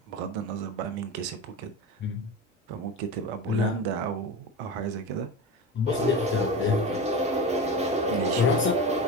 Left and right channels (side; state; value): both; normal; correlation 0.26